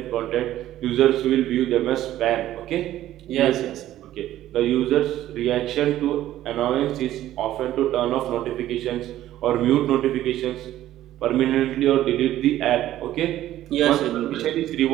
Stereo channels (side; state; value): left; quieter; 13.5 dB